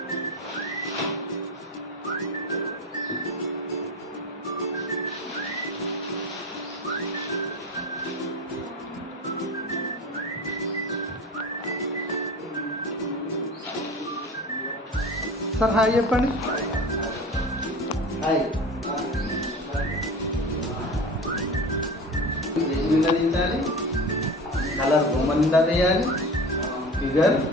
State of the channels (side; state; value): both; normal; correlation 0.32